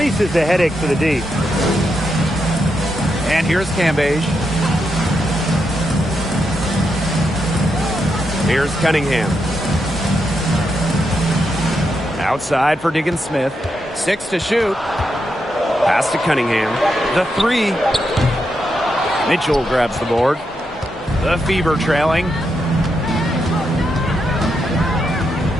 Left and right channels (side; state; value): both; normal; correlation 0.83